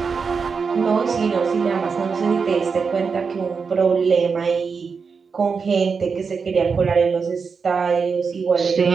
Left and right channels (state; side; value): quieter; left; 5.4 dB